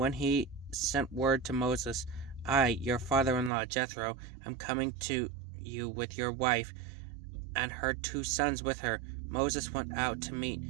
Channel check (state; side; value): drops out; left; at 3.5 s